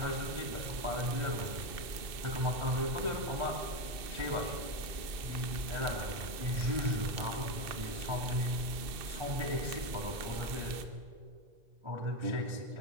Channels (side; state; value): left; late; 2.6 ms